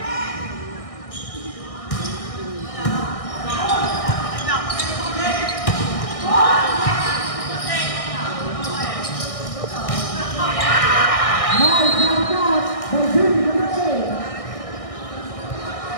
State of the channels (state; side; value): late; right; 1.6 ms